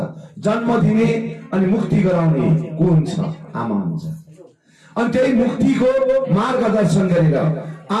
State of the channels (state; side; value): identical; both; correlation 1.00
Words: जन्म दिने अनि मुक्ति गराउने को हुन्छ आमा हुन्छ अनि त्यही मुक्तिको मार्गदर्शन गरेर